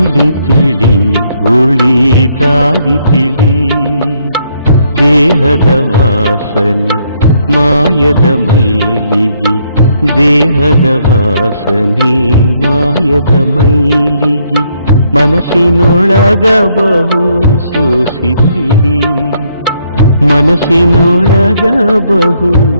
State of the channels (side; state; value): both; inverted; correlation -0.71